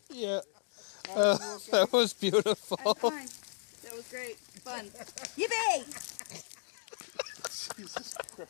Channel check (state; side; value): silent; right; digital silence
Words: Yeah. That was beautiful. I'm fine. That was great. Fun. Yippee! Jesus